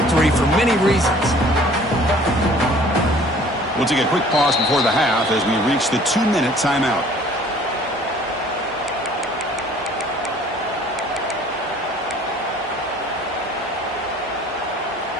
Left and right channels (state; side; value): normal; both; correlation 0.53